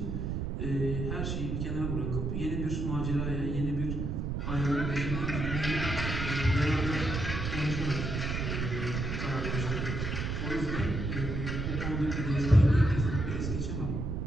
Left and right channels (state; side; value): noise; right; rumble, 2 dB below the sound